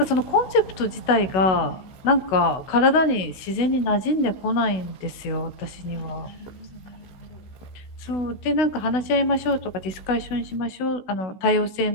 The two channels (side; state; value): right; late; 16 ms